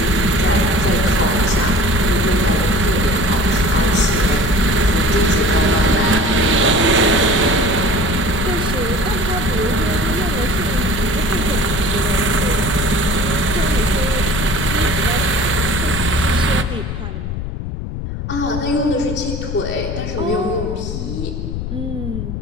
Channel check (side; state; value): left; noise; rumble, 5 dB below the sound